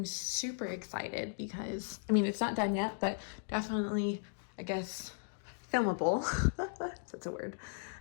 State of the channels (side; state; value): right; silent; digital silence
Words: super excited because, I mean, it's not done yet, but definitely, I guess, filmable. That's a word.